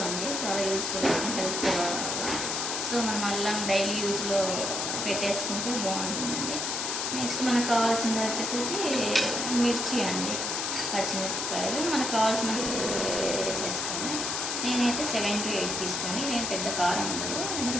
అండి, చాలా యూస్ఫుల్ హెల్త్. సో మనం అల్లం డైలీ యూజ్లో పెట్టేసుకుంటే బాగుంటుందండి. నెక్స్ట్ మనకు కావాల్సింది వచ్చేసేసి మిర్చి అండి, పచ్చిమిరపకాయలు మనకు కావాల్సినవి వేసేసుకోండి. నేనైతే 7 to 8 తీసుకోండి, నేను పెద్ద కారం ఉండదు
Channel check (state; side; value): noise; left; hiss, 1 dB below the sound